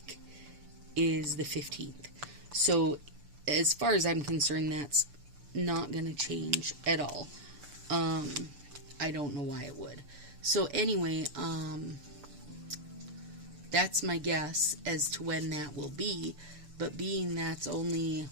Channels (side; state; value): left; late; 6.8 ms